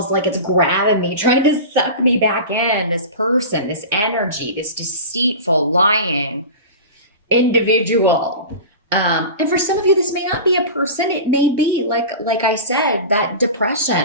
like it's grabbing me, trying to suck me back in. This person, this energy, this deceitful, lying individual. And for some of you, this may not be a person. It may be like I said, that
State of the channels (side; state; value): both; inverted; correlation -0.31